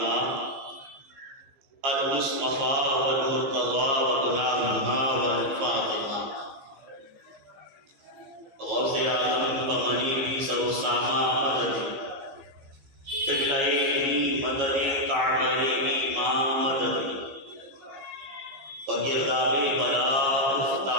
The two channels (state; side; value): late; left; 15 ms